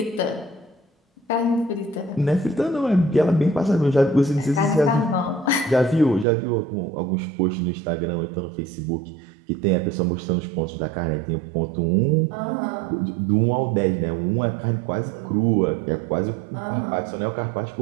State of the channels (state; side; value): drops out; left; at 6.2 s